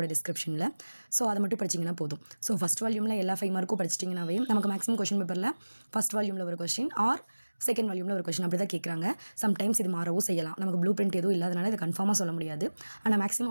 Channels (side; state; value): both; inverted; correlation -1.00